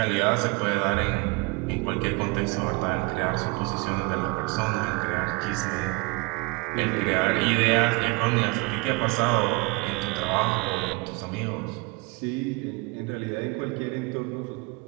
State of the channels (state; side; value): quieter; left; 26.6 dB